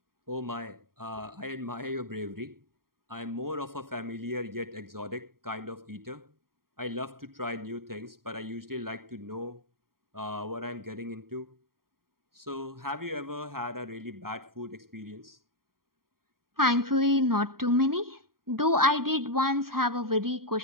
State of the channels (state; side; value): late; left; 0.93 ms